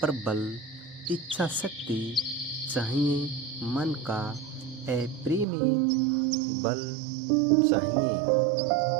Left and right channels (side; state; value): left; drops out; at 5.5 s